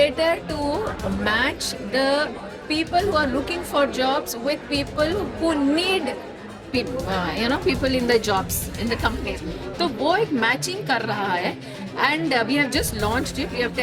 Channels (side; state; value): both; identical; correlation 1.00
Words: to match the people who are looking for jobs with people who need people in the jobs in the companies. तो वो एक matching कर रहा है, and we have just launched it, we have